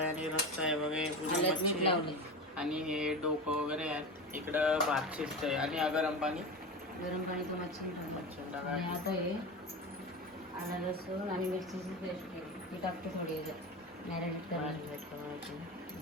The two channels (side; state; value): both; normal; correlation 0.26